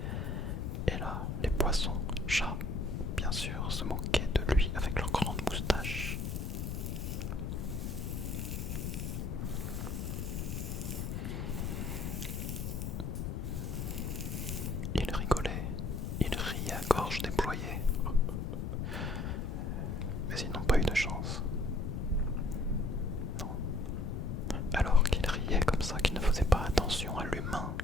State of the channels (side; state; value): left; noise; rumble, 3 dB below the sound